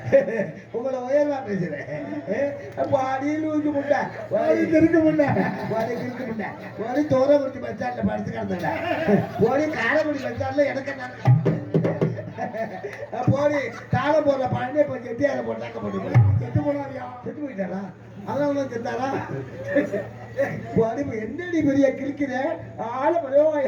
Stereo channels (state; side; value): identical; both; correlation 1.00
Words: உங்களை உயர்வா பேசுறேன். அடியில் ஊற்றி முட்டை இருக்க முட்டை இருக்க முட்டை ஓடி தோரக்குறிச்சி பஸ் ஸ்டாண்ட்ல படுத்து கிடந்தல ஓடி காரைக்குடி பஸ் ஸ்டாண்ட்ல எனக்கு போடி தாளம் போடுற பழனே போய் செட்டி அதை போட்டாக்க போட்டு செத்து போனாரியா? செத்து போயிட்டாரா? அதனால தான் செத்தாரா? என்னடி பெரிய கிழிக்கிற ஆள